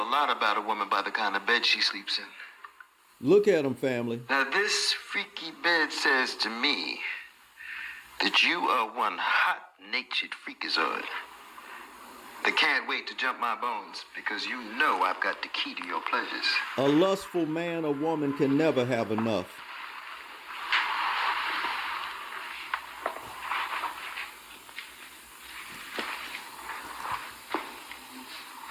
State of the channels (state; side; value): identical; both; correlation 1.00